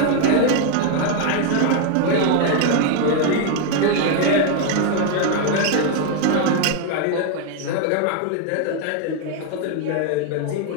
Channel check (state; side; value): different; both; correlation 0.01